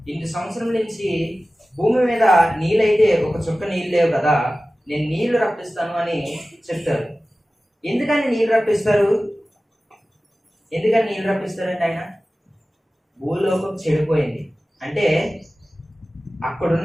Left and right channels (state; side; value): normal; both; correlation 0.96